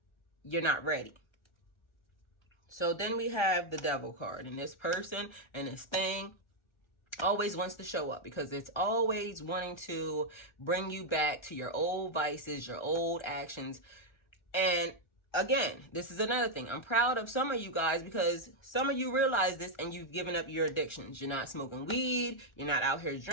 you're not ready? So then we have the Devil card, and this person and this thing always wants to show up because it's always wanting to bring you back to your old vices, your old actions. And again, this is another thing. I'm proud of some of you guys because some of you realize this and you've given up your addictions. You're not smoking weed. You're not out here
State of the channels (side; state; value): right; late; 1.3 ms